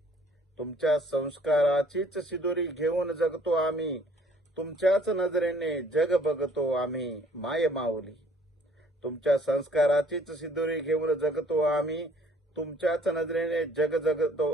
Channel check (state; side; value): normal; both; correlation 0.58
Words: सिदोरी घेऊन जगतो आम्ही. तुमच्याच नजरेने जग बघतो आम्ही माय माऊली. तुमच्या संस्काराचीच सिदोरी घेऊन जगतो आम्ही. तुमच्याच नजरेने जग